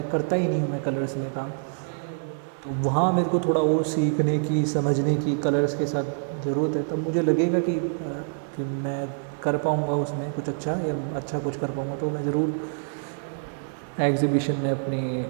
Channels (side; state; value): left; silent; digital silence